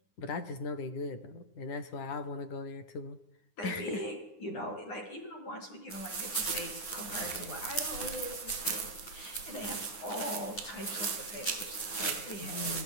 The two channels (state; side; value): late; right; 9.8 ms